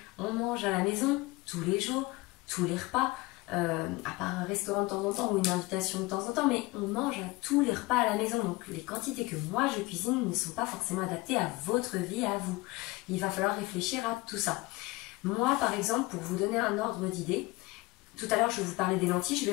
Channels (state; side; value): quieter; right; 21.7 dB